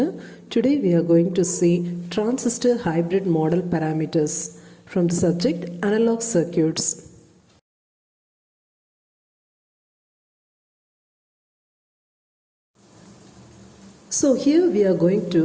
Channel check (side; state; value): both; identical; correlation 1.00